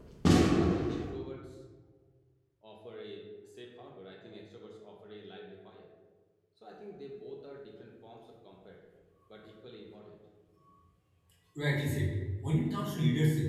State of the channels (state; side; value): identical; both; correlation 1.00